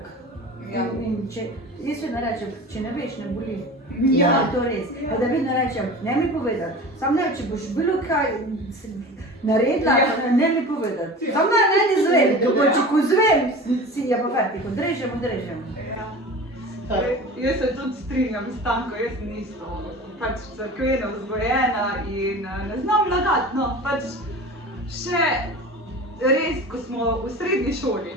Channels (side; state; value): both; normal; correlation 0.36